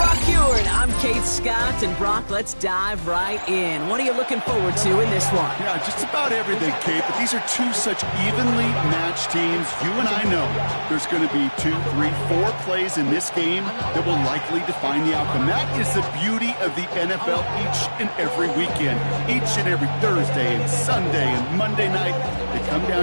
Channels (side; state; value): both; inverted; correlation -1.00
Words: Ewart, I'm Kate Scott. And Brock, let's dive right in. What are you looking forward to in this one? Yeah, just about everything, Kate. But these are two such evenly matched teams. You and I know there's going to be 2, 3, 4 plays in this game that will likely define the outcome. That is the beauty of the NFL each and every weekend. Each and every Thursday and Sunday and Monday night, they come